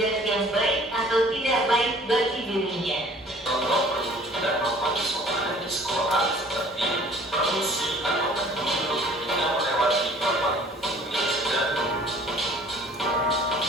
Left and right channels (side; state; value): both; normal; correlation 0.52